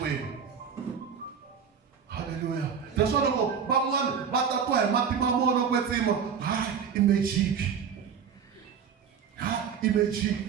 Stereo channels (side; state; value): left; quieter; 7.1 dB